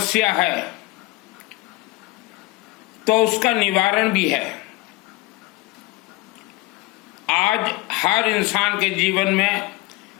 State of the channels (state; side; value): quieter; right; 19.8 dB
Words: है तो उसका निवारण भी है। आज हर इंसान के जीवन में